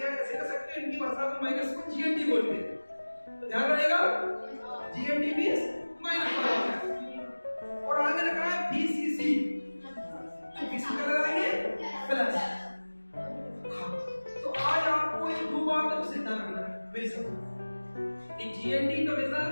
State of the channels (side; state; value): both; inverted; correlation -1.00